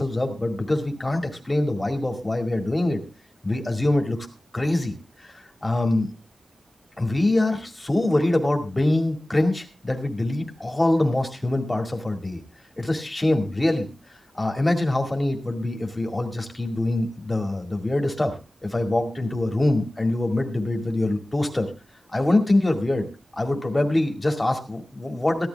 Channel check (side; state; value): both; normal; correlation 0.97